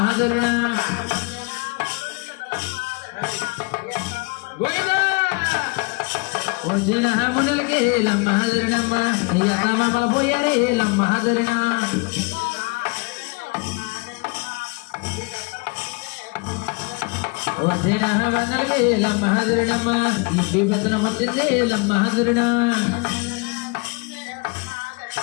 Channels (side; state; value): right; quieter; 29.0 dB